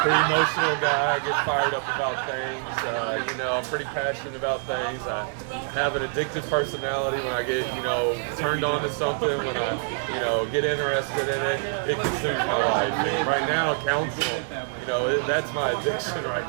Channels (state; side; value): silent; left; 59 dB below the other